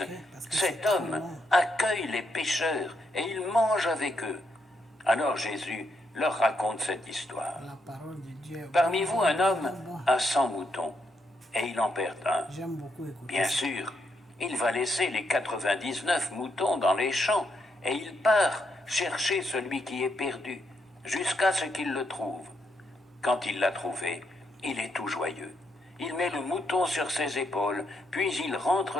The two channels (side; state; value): both; normal; correlation 0.79